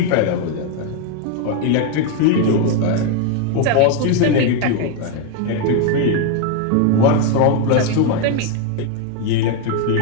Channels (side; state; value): both; different; correlation 0.01